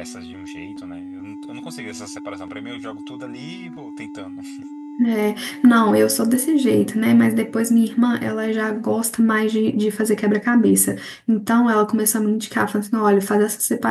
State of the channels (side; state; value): both; identical; correlation 1.00